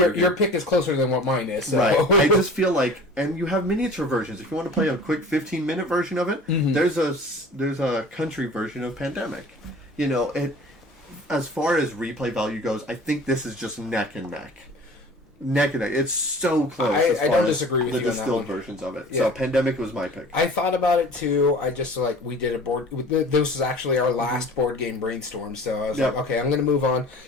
pick is closer than what mine is. So. Right. I just feel like, and you have miniature versions. If you want to play a quick 15-minute version of it, there's a country version of Pandemic. You know, as far as replay value goes, I think this is just neck and neck. Neck and neck. It's so close. I don't disagree with the you on that distilled one. versions of it. Yeah. So Pandemic was my pick. I thought about it too. I just we did a board. This is actually our last board game brainstorm. So I was like, okay, I'm going to move on.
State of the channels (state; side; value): normal; both; correlation 0.43